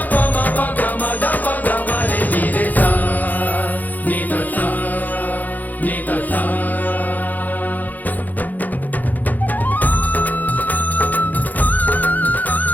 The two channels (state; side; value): late; right; 0.082 ms